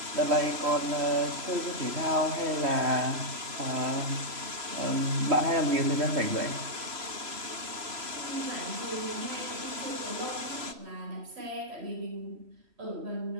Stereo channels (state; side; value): late; left; 3.0 ms